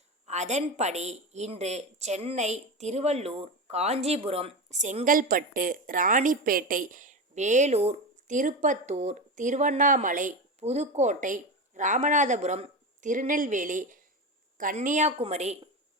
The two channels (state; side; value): normal; both; correlation 0.21